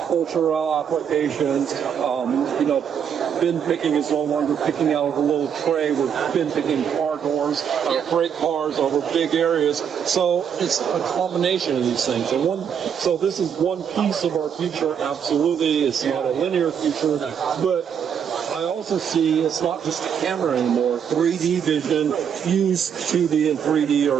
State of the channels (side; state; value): left; quieter; 7.9 dB